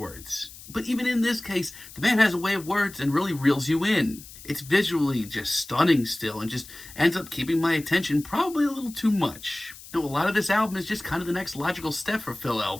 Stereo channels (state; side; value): noise; left; hiss, 17 dB below the sound